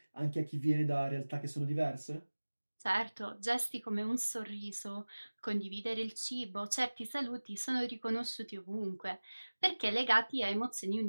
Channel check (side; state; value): both; inverted; correlation -1.00